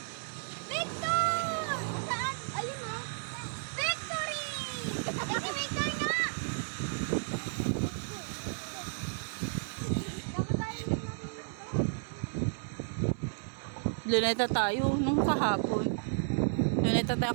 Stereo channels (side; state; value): left; silent; 56 dB below the other